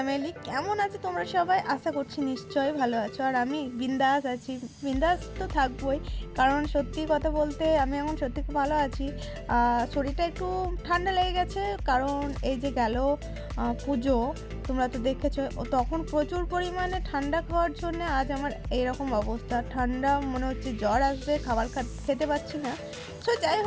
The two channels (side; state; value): both; identical; correlation 1.00